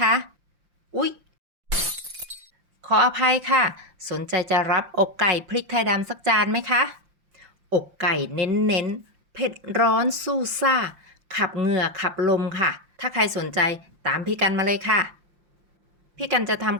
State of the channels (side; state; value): left; late; 5.7 ms